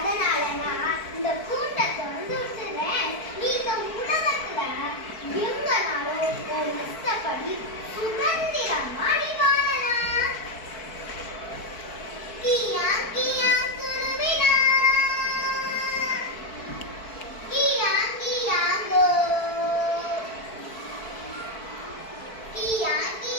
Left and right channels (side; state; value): right; late; 4.5 ms